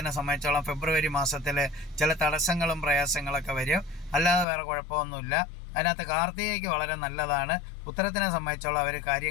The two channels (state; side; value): drops out; right; at 4.5 s